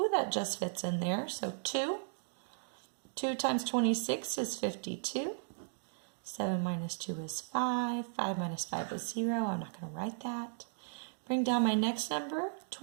that just fits in there. So 2. 2 times 26 is 52. 7 minus 2 is 5. 5 minus 5 is 0. I'm not going to write that. Bring down my next number.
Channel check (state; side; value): silent; left; digital silence